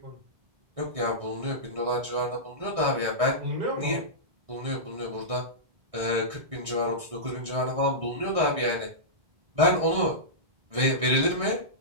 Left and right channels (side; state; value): left; late; 1.6 ms